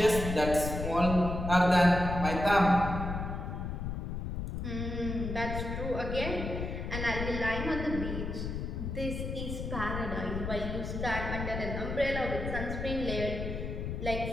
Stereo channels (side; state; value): left; noise; rumble, 4 dB below the sound